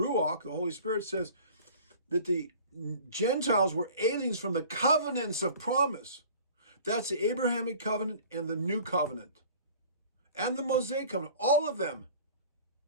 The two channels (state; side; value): inverted; both; correlation -0.46